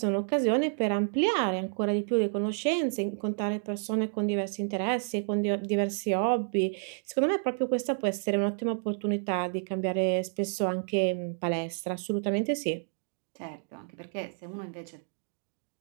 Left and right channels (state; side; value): silent; left; digital silence